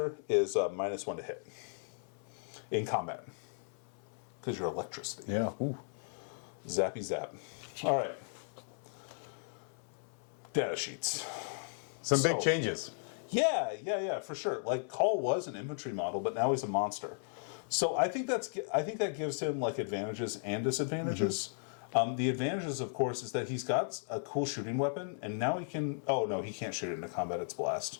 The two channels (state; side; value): silent; right; 54 dB below the other